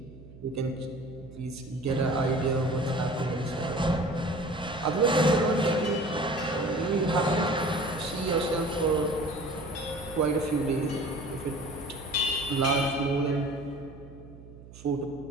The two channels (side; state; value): right; noise; hum, 18 dB below the sound